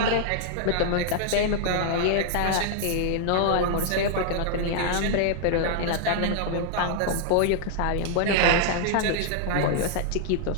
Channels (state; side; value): different; both; correlation -0.01